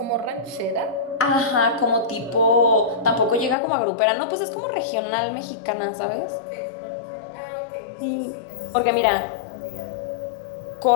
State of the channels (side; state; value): right; drops out; at 3.6 s